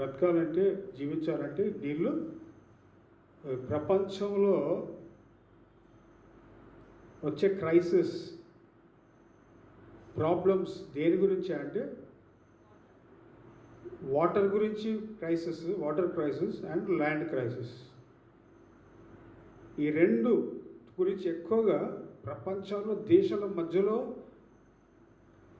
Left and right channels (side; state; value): both; identical; correlation 1.00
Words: జీవించాలంటే నీళ్ళు. ప్రపంచంలో వచ్చే క్రైసిస్, ప్రాబ్లమ్స్ దేని గురించి అంటే వాటర్ గురించి crisis, water crisis and land crisis. ఈ రెండు గురించి ఎక్కువగా ప్రపంచంలో దేశాల మధ్యలో